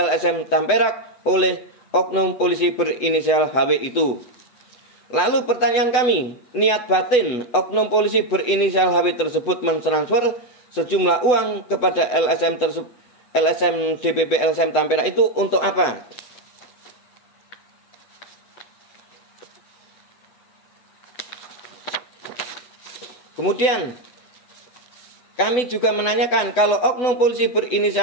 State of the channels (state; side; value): late; right; 8.0 ms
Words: Tamperak oleh oknum polisi berinisial HW itu. Lalu pertanyaan kami, niat batin oknum polisi berinisial HW tersebut mentransfer sejumlah uang kepada LSM DPP LSM Tamperak itu untuk apa? Kemudian kami juga menanyakan, kalau oknum polisi